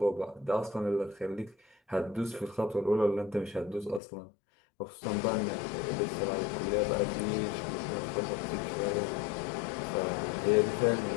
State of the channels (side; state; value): right; drops out; at 4.0 s